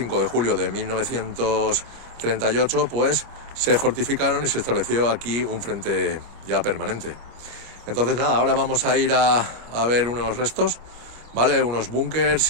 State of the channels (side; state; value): left; late; 25 ms